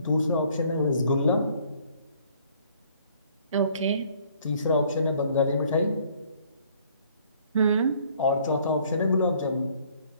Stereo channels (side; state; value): both; inverted; correlation -0.59